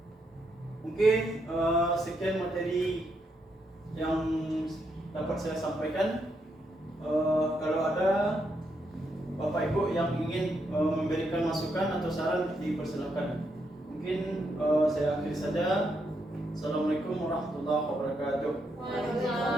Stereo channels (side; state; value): both; normal; correlation 0.79